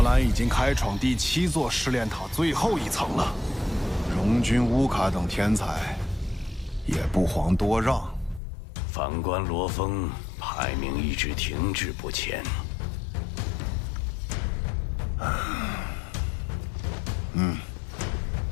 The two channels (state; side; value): drops out; right; at 8.4 s